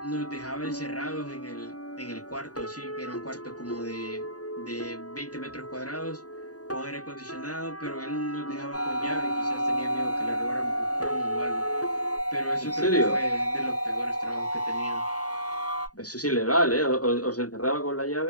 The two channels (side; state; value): right; late; 0.68 ms